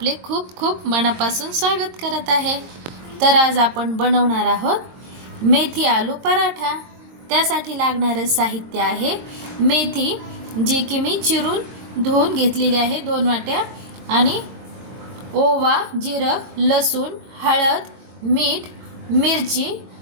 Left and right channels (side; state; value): left; late; 23 ms